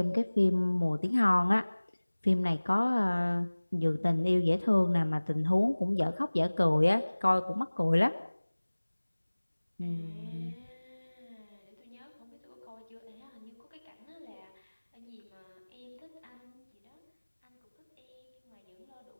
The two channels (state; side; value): inverted; both; correlation -1.00